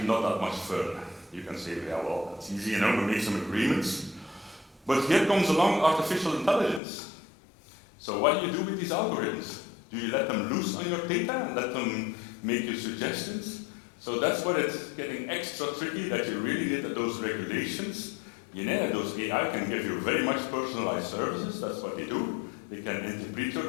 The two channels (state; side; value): drops out; right; at 6.8 s